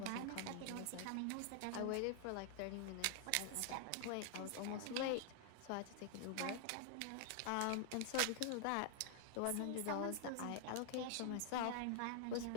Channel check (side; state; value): both; different; correlation 0.00